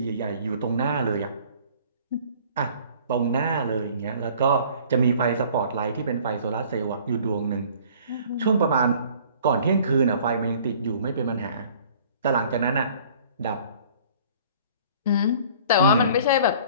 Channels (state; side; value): inverted; both; correlation -0.51